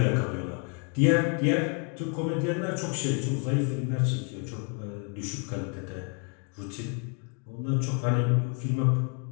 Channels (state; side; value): quieter; right; 37.3 dB